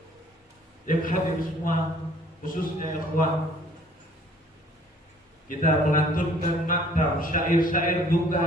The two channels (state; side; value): normal; both; correlation 0.57